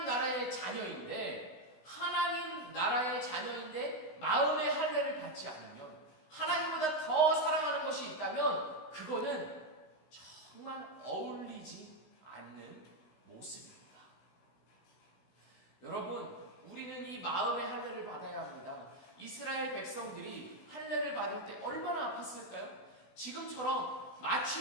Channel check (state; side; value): late; right; 16 ms